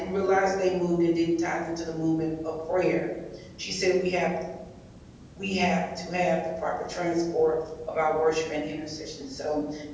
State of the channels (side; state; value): both; identical; correlation 1.00